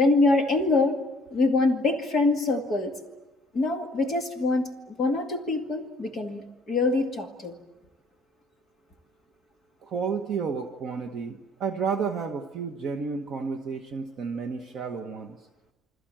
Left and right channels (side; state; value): both; normal; correlation 0.58